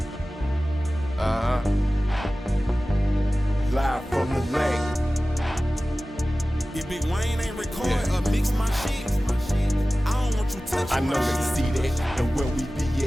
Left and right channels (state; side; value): normal; both; correlation 0.96